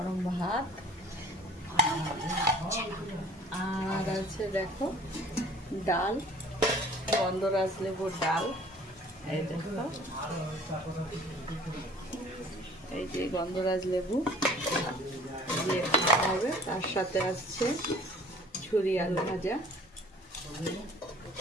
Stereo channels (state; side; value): normal; both; correlation 0.51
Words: ভাত, আর আছে দেখো ডাল, গন্ধরাজ লেবুর ডাল। এই দেখো, এই যে গন্ধরাজ লেবু দিয়ে খাওয়া হবে। তার সাথে আসছে ঝুরি আলু ভাজা,